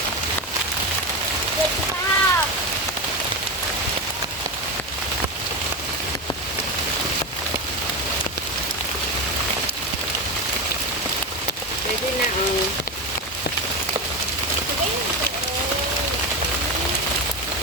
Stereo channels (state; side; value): normal; both; correlation 0.18